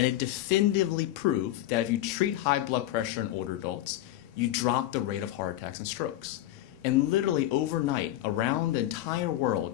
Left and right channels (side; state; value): right; quieter; 14.3 dB